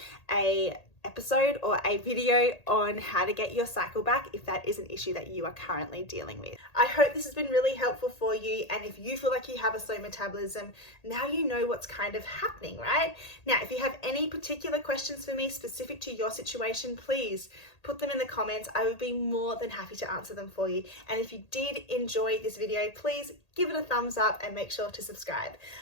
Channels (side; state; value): right; late; 1.8 ms